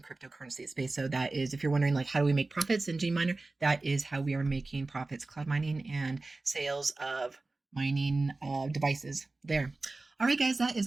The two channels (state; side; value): quieter; left; 3.3 dB